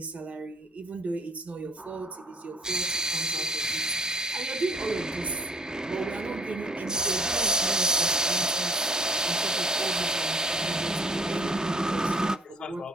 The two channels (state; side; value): normal; both; correlation 0.54